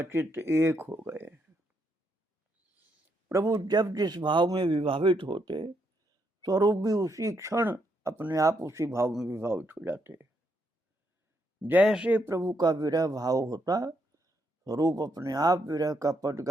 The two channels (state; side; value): normal; both; correlation 0.77